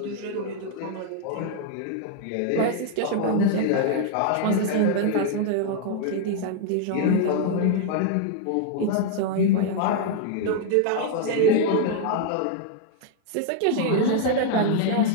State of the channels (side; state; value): both; different; correlation 0.00